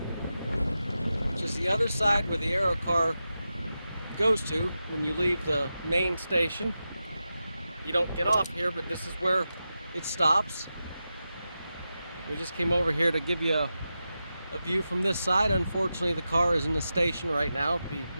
which is the other side where the Aero car goes to when you leave the main station. You don't get off here, but this is where it stops. We just came over here to give you a view from this side. Unfortunately, the car is in the station right now. It'd be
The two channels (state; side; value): inverted; both; correlation -0.91